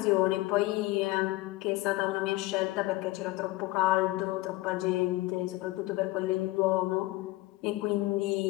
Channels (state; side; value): quieter; right; 19.4 dB